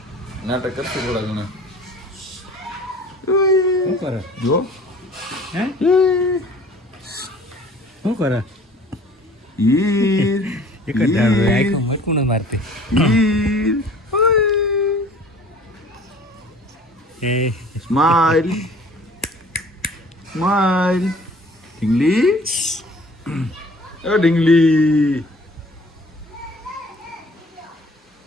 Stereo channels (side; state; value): both; normal; correlation 0.49